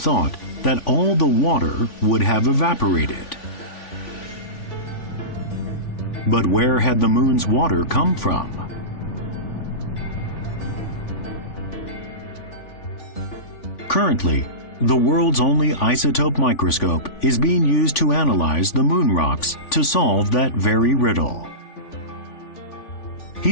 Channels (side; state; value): right; late; 3.5 ms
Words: that all the water would have evaporated. But where had the moon's water come from? Currently, the world's only isotope microscope is being used to analyze the moon rocks to solve that very riddle.